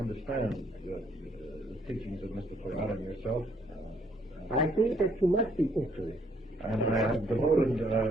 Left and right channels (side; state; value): both; normal; correlation 0.67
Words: the teachings of Mr. Toyota and yourself. I think that you must be interested. And I have devoted,